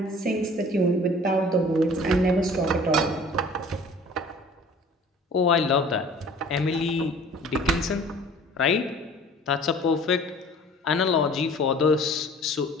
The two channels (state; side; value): normal; both; correlation 0.48